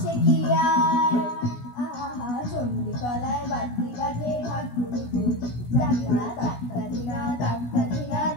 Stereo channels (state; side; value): late; right; 16 ms